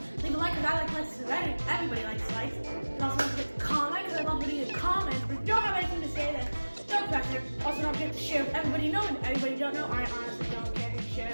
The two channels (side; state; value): both; inverted; correlation -1.00